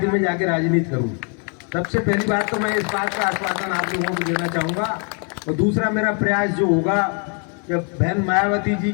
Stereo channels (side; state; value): right; quieter; 39.0 dB